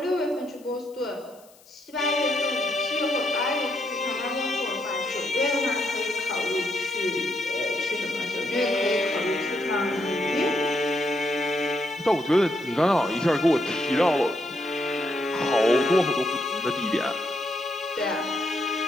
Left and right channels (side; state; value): left; noise; hiss, 27 dB below the sound